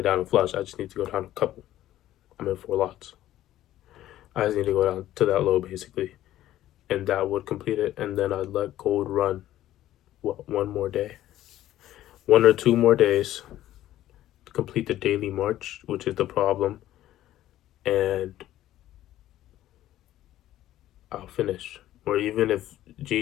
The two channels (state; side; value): quieter; right; 13.6 dB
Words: down to flush. I just need to go down a couple. I'm in 4 lots. I just need to go down to that low basically, and that would complete it. And then I'd let gold run, one more day, 1 or 2 more days to complete the daily march, which is the problem, and I'll finish. Or even if